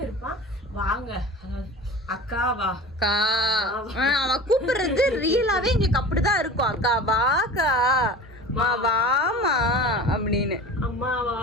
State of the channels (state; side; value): normal; both; correlation 0.37